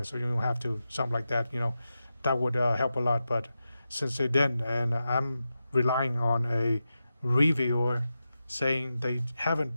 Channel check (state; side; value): inverted; both; correlation -0.90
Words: so you don't have to something like that. That would help a lot. But since they didn't, and I'm relying on a reviewer saying they